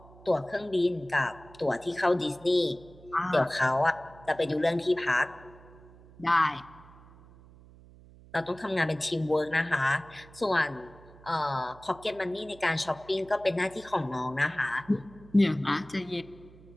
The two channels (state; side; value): noise; right; hum, 22 dB below the sound